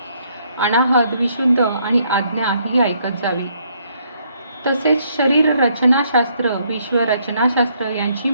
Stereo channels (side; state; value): both; inverted; correlation -0.70